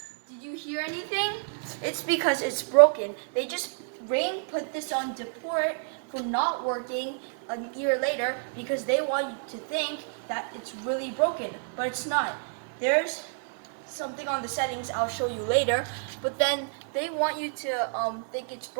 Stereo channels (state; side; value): silent; left; digital silence